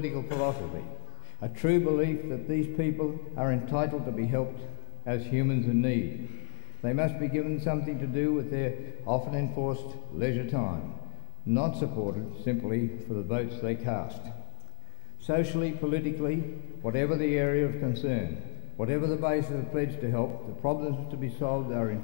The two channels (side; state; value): right; silent; digital silence